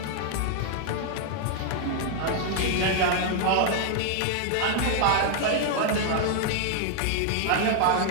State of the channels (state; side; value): different; both; correlation 0.00